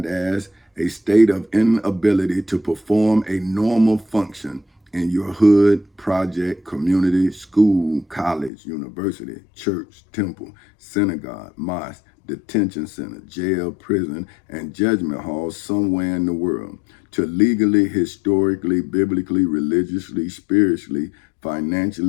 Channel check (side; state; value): right; drops out; at 8.5 s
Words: as a state of inability to perform a normal function in your hood, project, community, school, college, university, church, temple, synagogue, mosque, detention center, jail, prison, and judgment hall somewhere in the world, to legally, historically, biblically, religiously, spiritually,